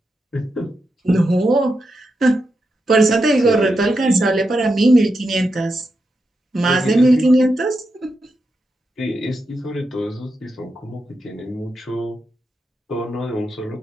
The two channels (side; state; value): both; normal; correlation 0.86